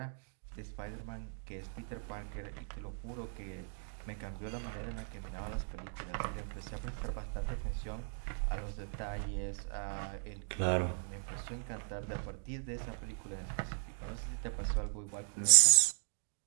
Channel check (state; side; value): silent; left; digital silence